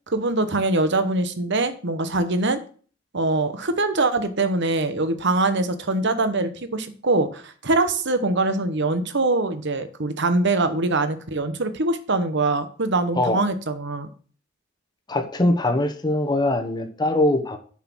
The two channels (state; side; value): normal; both; correlation 0.09